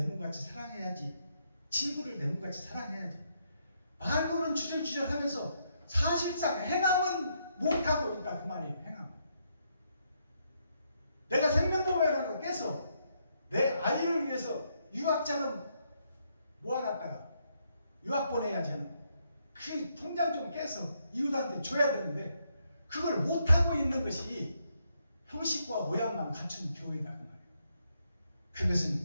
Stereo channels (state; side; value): inverted; both; correlation -0.76